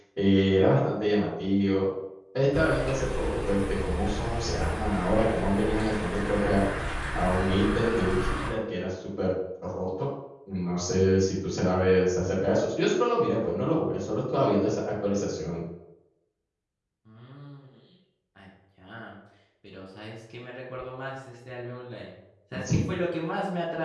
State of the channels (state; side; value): identical; both; correlation 1.00